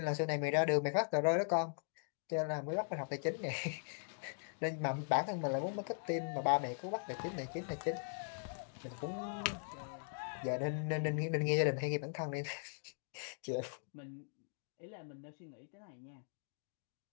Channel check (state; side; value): silent; right; digital silence